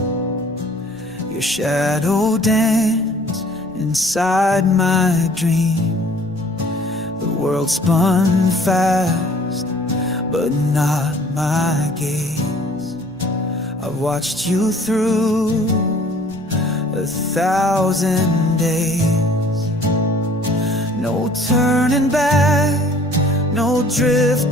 your shadow danced inside my dream. The world spun fast, but not my gaze. I've watched you through 1,000 days. No turning back, no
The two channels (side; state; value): right; noise; rumble, 24 dB below the sound